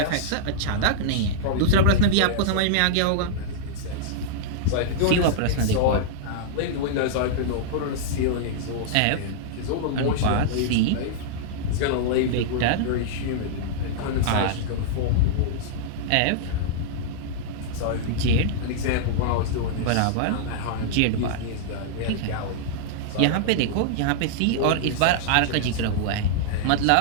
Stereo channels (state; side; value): different; both; correlation -0.01